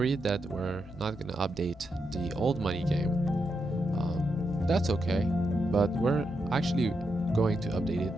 that we're not gonna update the old money game, that's okay. But we're actually going to update it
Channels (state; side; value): normal; both; correlation 0.84